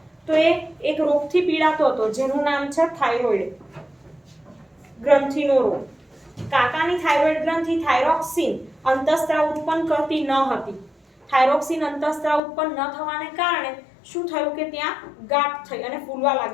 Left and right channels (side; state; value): right; drops out; at 12.4 s